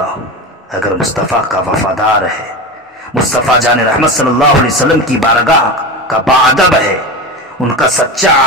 ہو، اگر مصطفیٰ کا وفادار ہے، مصطفیٰ جان رحمت صلی اللہ علیہ وسلم کی بارگاہ کا باادب ہے، ان کا سچا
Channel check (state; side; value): normal; both; correlation 0.24